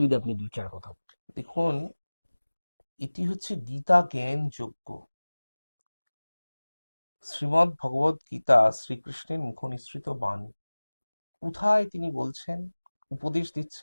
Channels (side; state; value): both; inverted; correlation -1.00